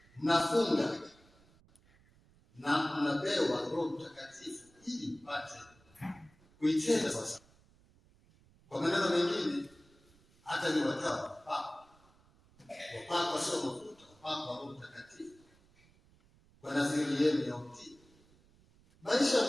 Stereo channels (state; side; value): noise; right; rumble, 29 dB below the sound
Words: mnafunga na mnapewa Roho Mtakatifu ili mpate kuitenda sasa. Kwa maneno mengine, hata ni watawa wapakwa sio mafuta, wapakwa Roho Mtakatifu kwa nadhiri yenu ya utii. Maisha